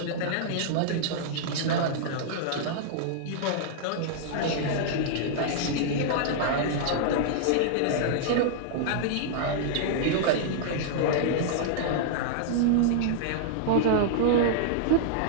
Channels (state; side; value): different; both; correlation -0.02